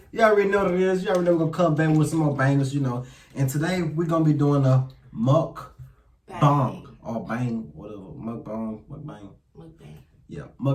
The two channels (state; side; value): identical; both; correlation 1.00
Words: You already know what it is. You already know we're gonna come back with some more bangers, you know. And today we're gonna be doing a mukbang or bang, whatever. Mukbang. Mukbang. Yeah,